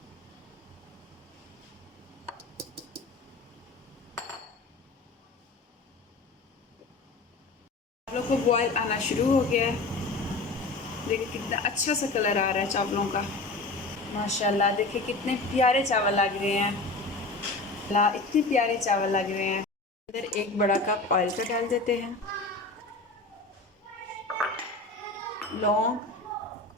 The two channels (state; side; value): quieter; right; 3.3 dB